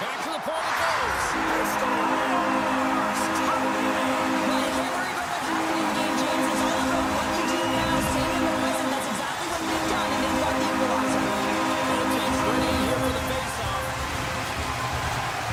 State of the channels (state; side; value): identical; both; correlation 1.00